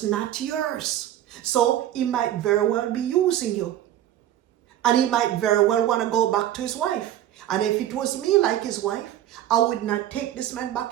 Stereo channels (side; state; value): left; quieter; 12.2 dB